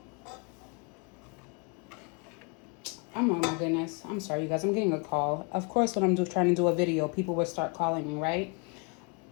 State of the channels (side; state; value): right; quieter; 33.5 dB